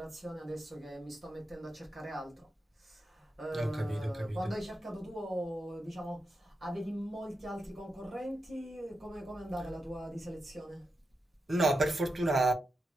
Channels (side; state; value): both; normal; correlation 0.88